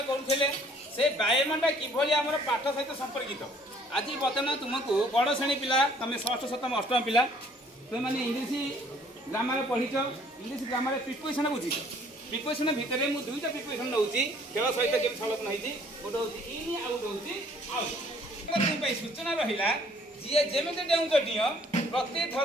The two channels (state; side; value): normal; both; correlation 0.59